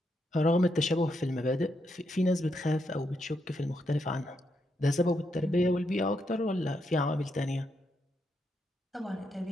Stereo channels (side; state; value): both; normal; correlation 0.80